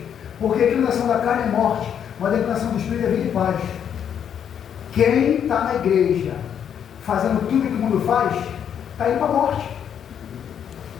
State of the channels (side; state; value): right; quieter; 8.6 dB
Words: Porque a inclinação da carne é morte, mas a inclinação do Espírito é vida e paz. Quem está na igreja fazendo tudo que o mundo faz, está indo para a morte.